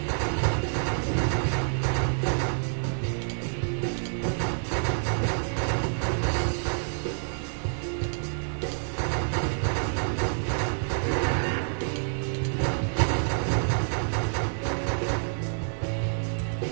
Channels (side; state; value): left; silent; digital silence